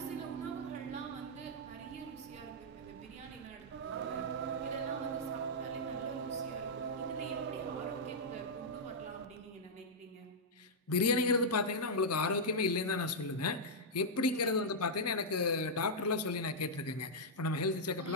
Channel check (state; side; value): normal; both; correlation -0.08